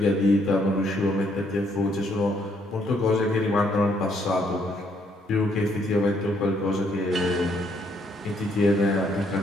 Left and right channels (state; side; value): normal; both; correlation 0.70